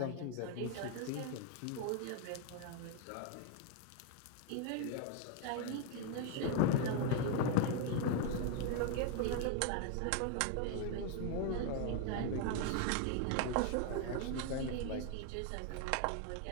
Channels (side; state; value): both; different; correlation 0.01